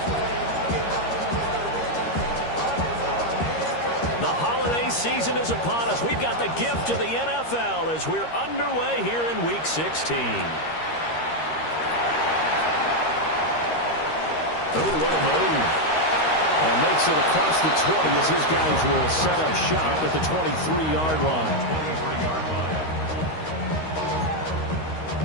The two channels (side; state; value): right; late; 13 ms